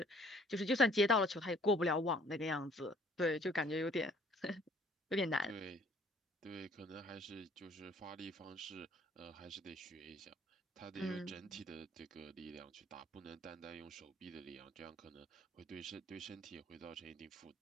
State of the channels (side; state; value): both; normal; correlation 0.57